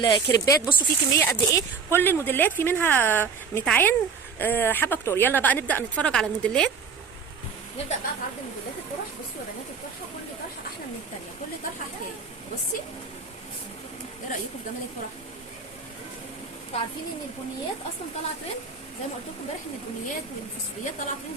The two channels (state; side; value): quieter; left; 5.5 dB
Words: بصوا في كميه قد ايه، كل الموديلات في منها متعين حبه كتور. يلا بقى نبدا نتفرج على الموديلات. نبدا بقى في عرض موديلات الطرح. بصوا يا بنات الطرحه، كل طرحه احلى من الثانيه، كل طرحه حكايه. بصي ايه رايكم في جمال الطرح؟ انتوا عارفين ان البنيات اصلا طالعه ترند، زي ما قلت لكم امبارح ان البنيات والفوسفوريات طالعه